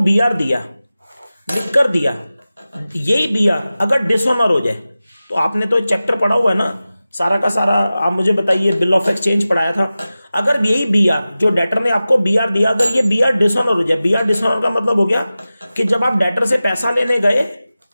दिया, लिख कर दिया, यही BR अगर डिसऑनर हो जाए, तो आपने तो चैप्टर पढ़ा हुआ है ना सारा का सारा, आप मुझे बताइए, बिल ऑफ एक्सचेंज पढ़ाया था। अगर यही BR, जो डेटर ने आपको BR दिया, अगर ये BR डिसऑनर हो जाए, BR डिसऑनर का मतलब हो गया कि जब आप डेटर से पैसा लेने गए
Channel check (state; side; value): inverted; both; correlation -0.95